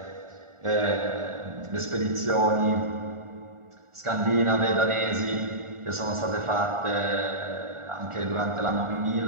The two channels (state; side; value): late; left; 1.4 ms